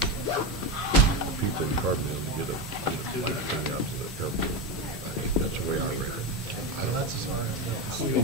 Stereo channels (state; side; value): normal; both; correlation 0.15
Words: people in Carbondale to get a bike thing out to the airport. I mean, that's the way I read it. That's as far as it goes.